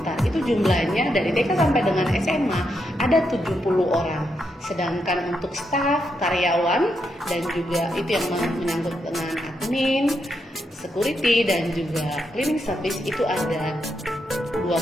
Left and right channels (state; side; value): normal; both; correlation 0.82